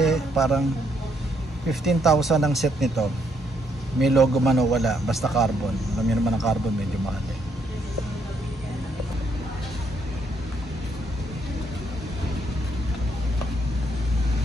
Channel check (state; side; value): normal; both; correlation 0.73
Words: parang 15,000 ang set nito. May logo man o wala, basta carbon. Alam niyo naman ang carbon medyo mahal eh.